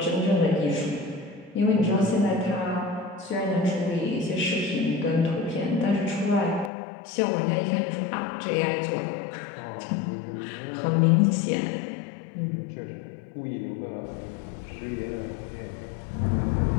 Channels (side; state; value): right; drops out; at 6.7 s